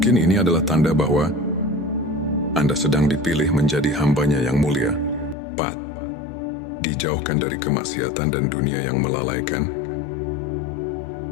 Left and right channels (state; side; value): drops out; right; at 5.4 s